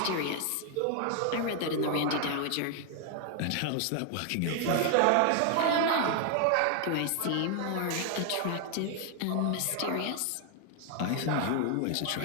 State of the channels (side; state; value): both; different; correlation 0.00